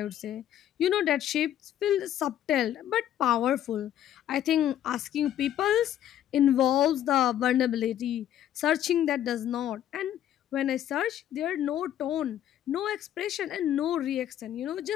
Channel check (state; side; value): quieter; right; 11.3 dB